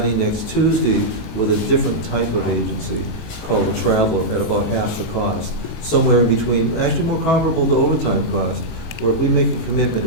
next Tuesday with a different type of agency called a traveler at about half the cost, somewhere in between, actually more comparable to overtime cost, where if we make a commitment,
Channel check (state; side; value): late; right; 18 ms